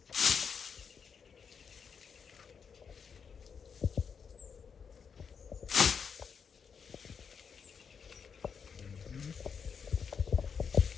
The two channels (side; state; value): right; quieter; 6.4 dB